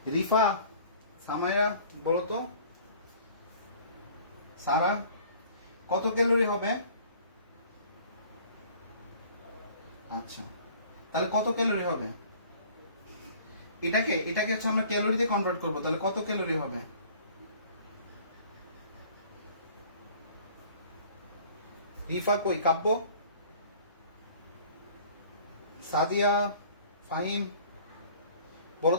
রিফা, সামাইয়া বলো তো, সারা কত ক্যালোরি হবে? আচ্ছা, তাহলে কত ক্যালোরি হবে? এটাকে হচ্ছে আমরা ক্যালোরিতে কনভার্ট করব, তাহলে কত ক্যালোরি হবে? রিফা কই, কাব্য, সাদিয়া, ফাহিম বলো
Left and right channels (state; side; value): inverted; both; correlation -0.51